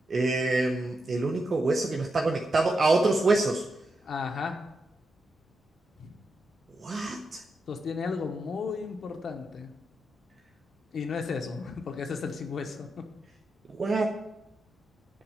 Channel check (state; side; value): normal; both; correlation 0.85